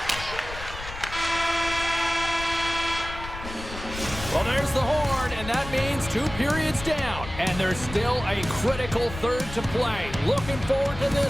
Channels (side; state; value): left; noise; rumble, 11 dB below the sound